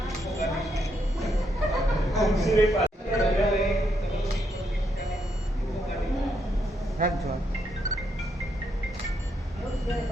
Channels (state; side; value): normal; both; correlation 0.77